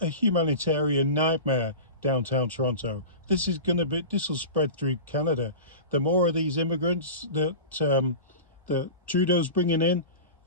a humanitarian nightmare, downtown Toronto. This will spread through Canada. The more of these immigrants that Trudeau's bringing in,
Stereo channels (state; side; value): inverted; both; correlation -0.31